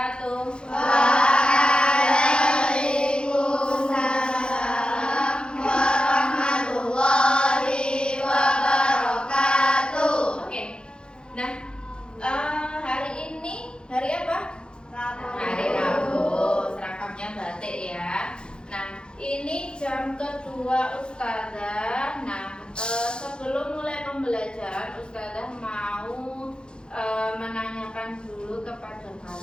Waalaikumsalam warahmatullahi wabarakatuh. Oke. Nah, hari ini hari apa? Hari Rabu. Seragamnya batik ya. Nah, ini jam kedua Ustazah. Nah, sebelum mulai pembelajaran, Ustazah mau menanyakan dulu kepada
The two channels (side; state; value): right; late; 0.050 ms